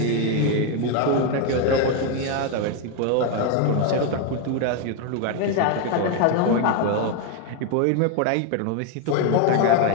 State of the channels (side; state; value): both; different; correlation 0.01